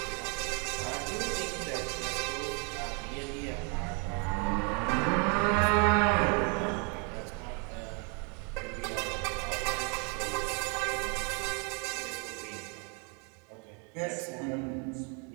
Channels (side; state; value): left; quieter; 35.9 dB